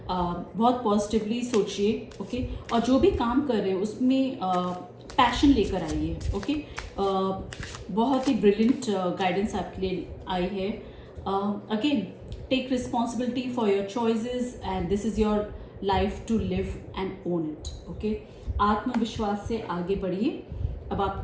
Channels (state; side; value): identical; both; correlation 1.00